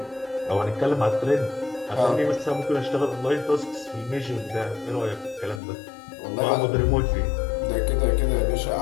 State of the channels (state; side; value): drops out; right; at 5.6 s